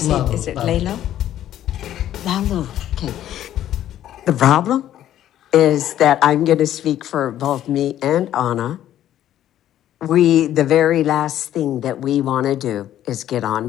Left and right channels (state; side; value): quieter; right; 11.9 dB